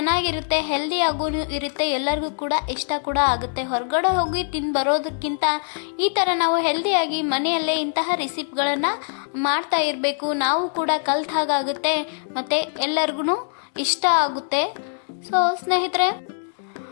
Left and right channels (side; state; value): right; silent; 63 dB below the other